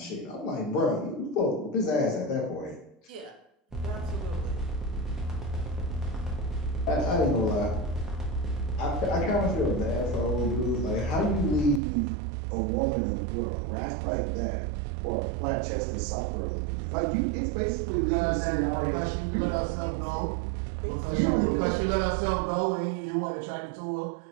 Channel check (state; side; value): drops out; left; at 11.8 s